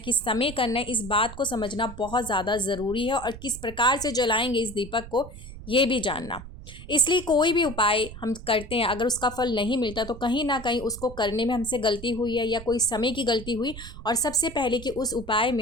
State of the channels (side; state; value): right; noise; rumble, 14 dB below the sound